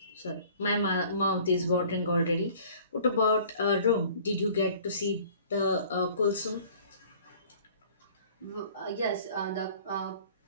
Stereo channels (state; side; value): inverted; both; correlation -0.50